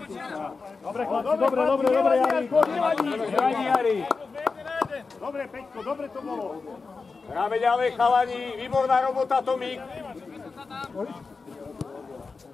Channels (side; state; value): right; quieter; 4.4 dB